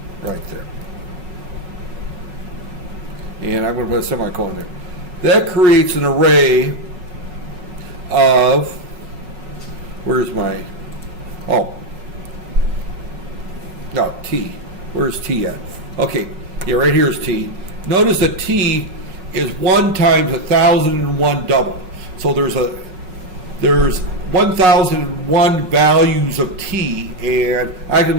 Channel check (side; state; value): left; late; 5.4 ms